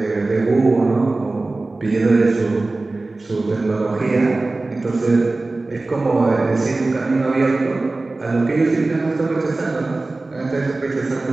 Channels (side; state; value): left; quieter; 3.2 dB